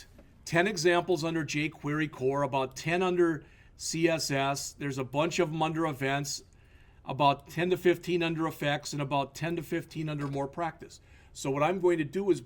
10 examples under jQuery core, about 10 under CSS. There's a bunch of them under events, about 10 to 15 under effects, and about 10 to 15 under more practice. So what I'm going to do is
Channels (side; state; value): both; identical; correlation 1.00